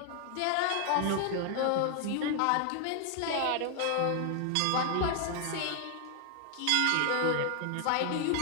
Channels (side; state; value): both; different; correlation 0.00